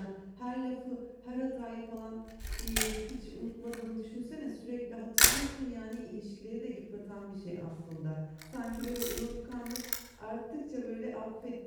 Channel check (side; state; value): both; identical; correlation 1.00